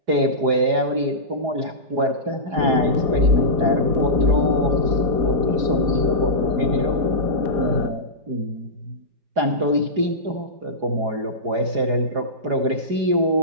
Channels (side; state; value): left; late; 4.8 ms